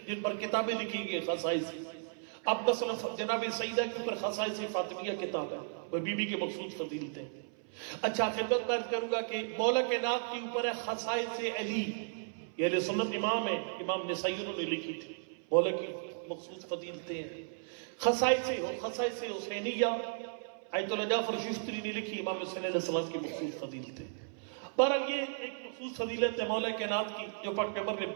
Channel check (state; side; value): silent; left; 55 dB below the other